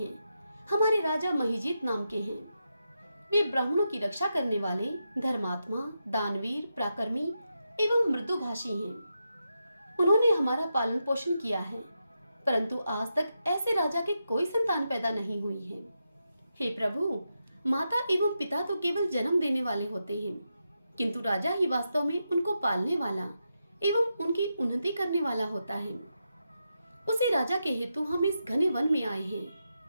हमारे राजा महिजीत नाम के हैं। वे ब्राह्मणों की रक्षा करने वाले धर्मात्मा, दानवीर, पराक्रमी एवं मृदुभाषी हैं। उन्होंने हमारा पालन पोषण किया है, परंतु आज तक ऐसे राजा के कोई संतान पैदा नहीं हुई है। हे प्रभु, माता एवं पिता तो केवल जन्म देने वाले होते हैं, किंतु राजा ही वास्तव में उनको पालने वाला एवं उनकी उन्नति करने वाला होता है। उसी राजा के हेतु हम इस घने वन में आए हैं।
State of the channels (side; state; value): both; inverted; correlation -0.86